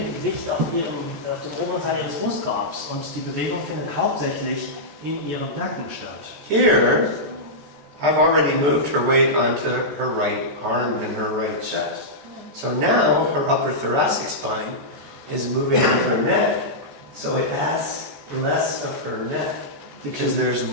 Gewicht auf dem oberen Teil ihres Brustkorbs und die Bewegung findet hauptsächlich in ihrem Nacken statt. Here, I've already moved her weight onto her right arm and her right chest. So now her upper thoracic spine is moving with her neck, so it adds less of her neck because there's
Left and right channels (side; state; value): left; late; 14 ms